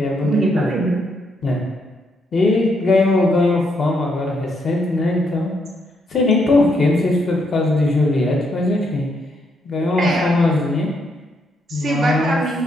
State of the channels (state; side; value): normal; both; correlation 0.76